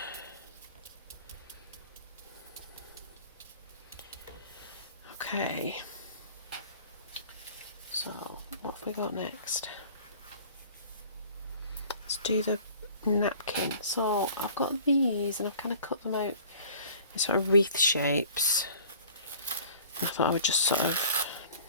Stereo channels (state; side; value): inverted; both; correlation -0.48